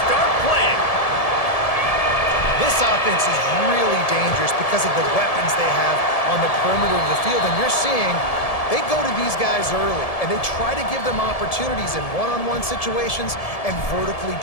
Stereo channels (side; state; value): right; late; 1.7 ms